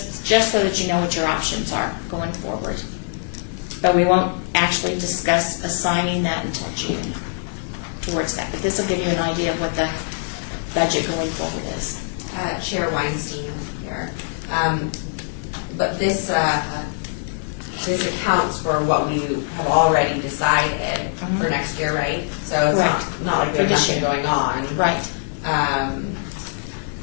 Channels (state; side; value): silent; right; 55 dB below the other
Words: so that you know what your options are going forward. But we won't actually discuss assigning that until June towards that. But this will give you an idea of what the budget going forward is. Chair Weinstein here. But this accounts for what we have already decided for next year, right? So it's not like there's nothing going on. Right.